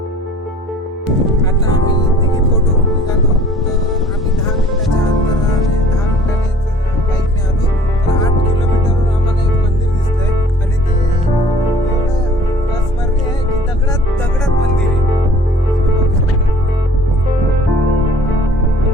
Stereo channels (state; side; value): normal; both; correlation 0.52